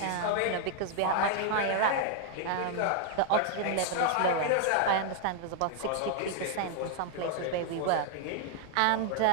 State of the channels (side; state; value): both; different; correlation 0.00